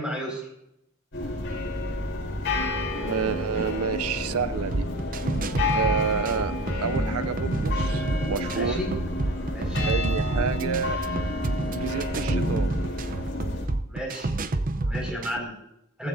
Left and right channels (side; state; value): both; normal; correlation 0.41